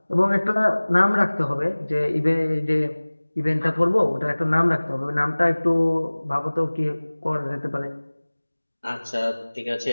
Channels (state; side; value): inverted; both; correlation -1.00